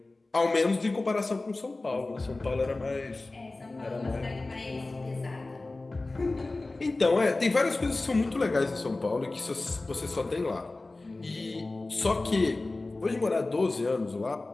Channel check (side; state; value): right; quieter; 3.1 dB